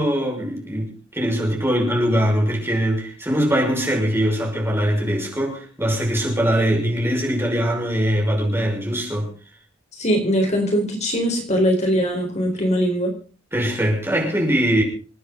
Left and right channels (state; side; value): normal; both; correlation 0.76